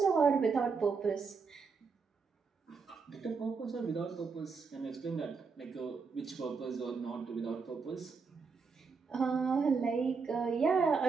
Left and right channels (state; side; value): quieter; left; 5.0 dB